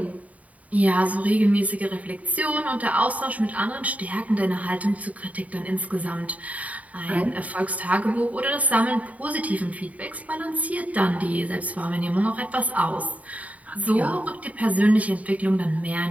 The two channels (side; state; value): left; late; 0.070 ms